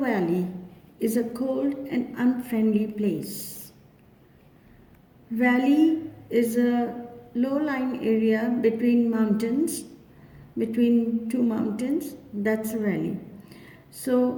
is a cold and unfriendly place. Valley is a low-lying area between two mountains. That's a valley.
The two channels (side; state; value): both; identical; correlation 1.00